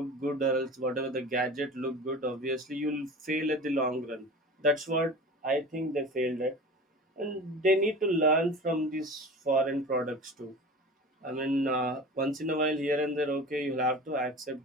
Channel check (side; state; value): both; normal; correlation 0.36